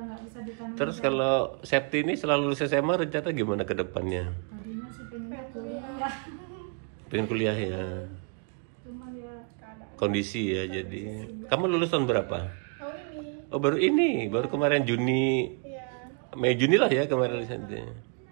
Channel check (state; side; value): quieter; left; 37.8 dB